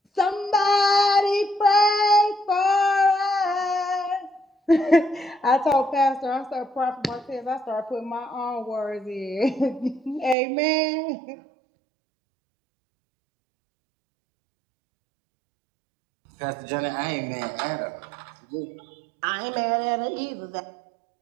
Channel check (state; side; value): drops out; left; at 10.4 s